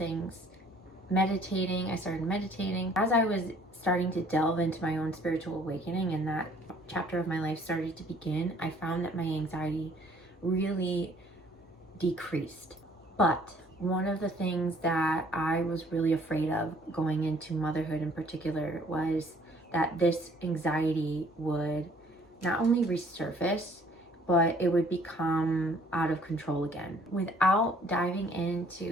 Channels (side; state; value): both; normal; correlation 0.59